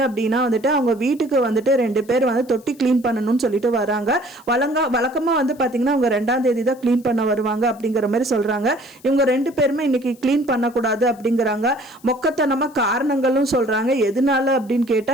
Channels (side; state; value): left; noise; hiss, 27 dB below the sound